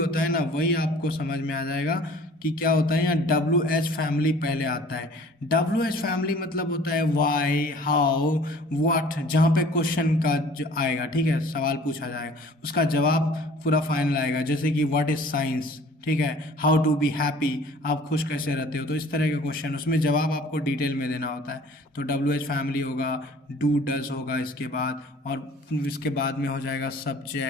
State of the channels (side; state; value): both; normal; correlation 0.50